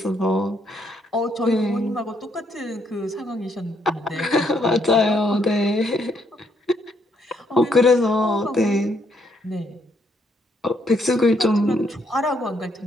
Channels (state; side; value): normal; both; correlation 0.72